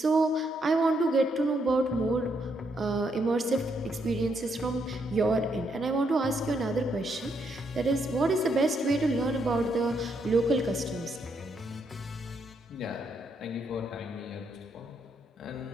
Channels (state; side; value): normal; both; correlation 0.76